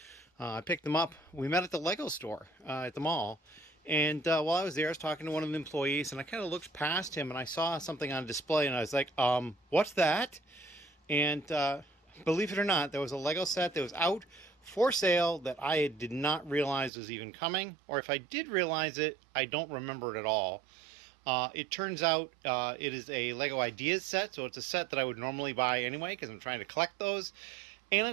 I picked them up. We met at the Lego store at the mall. And while I was there, I was talking to one of the employees, and I kind of looked past him, and I saw something on display, and I was like, what's that? And believe it or not, there was a Lego set that was out for sale that I did not realize was even coming. Or if I did realize it, I don't remember it at all. It turns out it is a Lego Ideas set, so it's a set that I would normally buy anyway because I'm trying to collect those. And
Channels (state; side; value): drops out; left; at 16.9 s